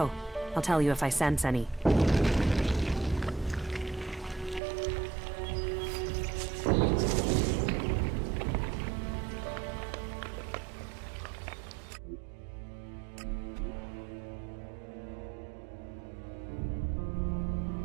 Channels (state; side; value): drops out; left; at 4.6 s